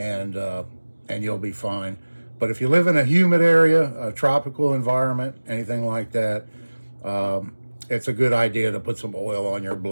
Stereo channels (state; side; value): inverted; both; correlation -1.00